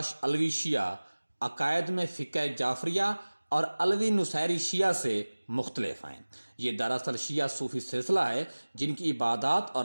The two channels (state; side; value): inverted; both; correlation -1.00